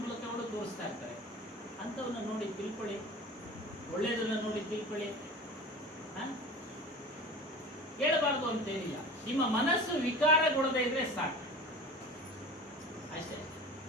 ಮೂಲಕ ತೋರಿಸ್ತಾ ಇರ್ತಾರೆ. ಅಂಥವನ್ನ ನೋಡಿ ತಿಳ್ಕೊಳ್ಳಿ, ಒಳ್ಳೇದನ್ನ ನೋಡಿ ತಿಳ್ಕೊಳ್ಳಿ. ಕೇಳಬಾರ್ದು ಅಂತೇನಿಲ್ಲ. ನಿಮ್ಮ ಮನಸ್ಸು ವಿಕಾರಗೊಳ್ಳದೆ ಇದ್ರೆ ಸಾಕು ಅಷ್ಟೇ.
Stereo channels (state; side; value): normal; both; correlation 0.36